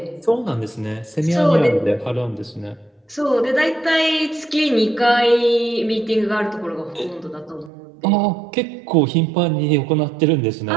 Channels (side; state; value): left; drops out; at 7.7 s